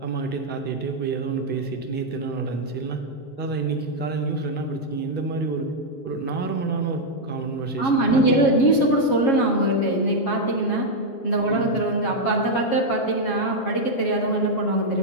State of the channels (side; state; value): right; late; 7.4 ms